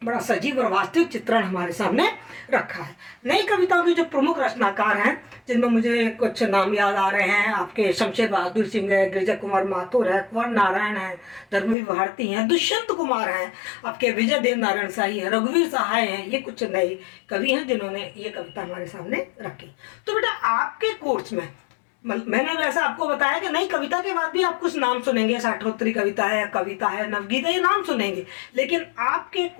बड़ा सजीव और वास्तविक चित्रण हमारे सामने रखा है। नई कविताओं के जो प्रमुख रचनाकार हैं, जिनमें मुझे कुछ नाम याद आ रहे हैं, आपके शमशेर बहादुर सिंह है, गिरिजा कुमार माथुर है, कुंवर नारायण है, धर्मवीर भारती हैं, दुष्यंत कुमार हैं, आपके विजय देव नारायण शाही है, रघुवीर सहाय हैं। ये कुछ नए कवि हैं जिन्होंने ये कविता हमारे सामने रखी। तो बेटा आपके कोर्स में मैंने वैसे आपको बताया कि नई कविता के बाद भी आप कुछ नाम सुनेंगे, साठोत्तरी कविता है, कविता है, नवगीता, ये नाम सुनेंगे, लेकिन आपके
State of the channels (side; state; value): right; drops out; at 11.8 s